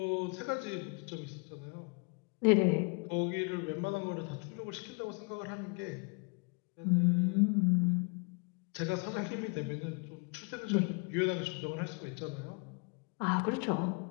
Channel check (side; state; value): right; quieter; 33.9 dB